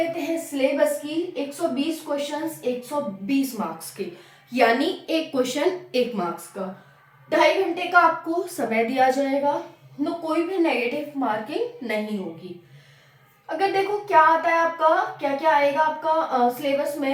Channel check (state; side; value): identical; both; correlation 1.00